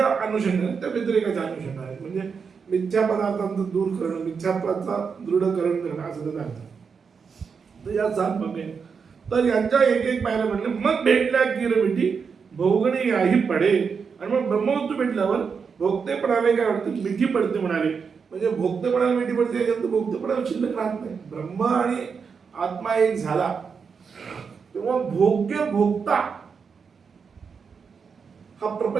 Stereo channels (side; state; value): left; quieter; 5.8 dB